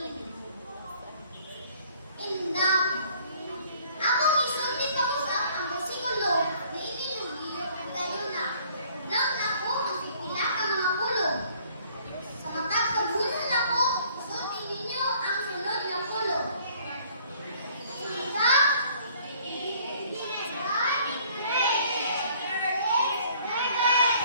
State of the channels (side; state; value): both; inverted; correlation -0.58